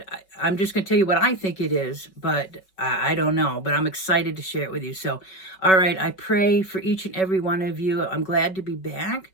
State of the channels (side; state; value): right; late; 5.3 ms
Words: I'm just going to tell you what I think it is, but I don't know. But I'm excited to share it with you. So, all right, I pray for each and every one of you. I'm glad to be back.